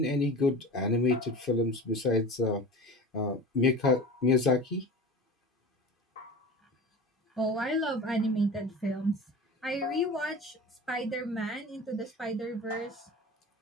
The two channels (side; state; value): both; normal; correlation 0.34